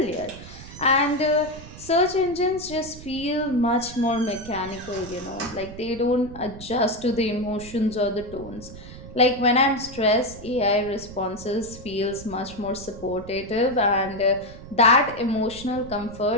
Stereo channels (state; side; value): noise; right; rumble, 15 dB below the sound